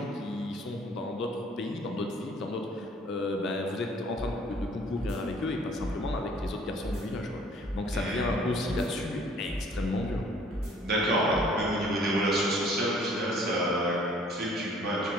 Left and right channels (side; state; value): both; normal; correlation 0.57